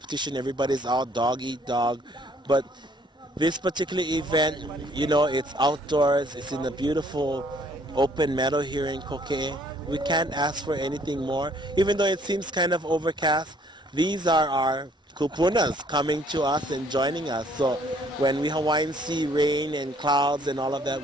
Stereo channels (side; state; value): both; normal; correlation 0.62